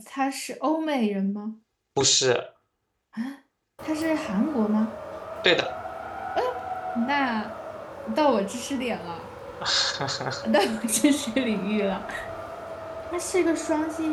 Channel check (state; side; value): identical; both; correlation 1.00